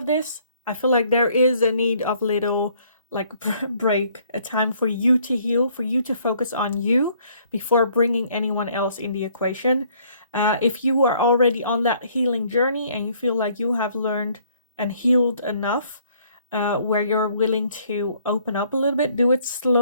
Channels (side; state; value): both; inverted; correlation -0.63